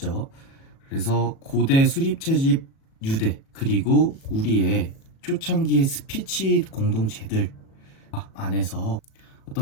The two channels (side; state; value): right; late; 37 ms